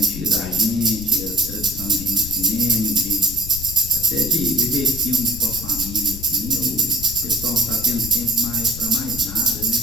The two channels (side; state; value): left; noise; rumble, 10 dB below the sound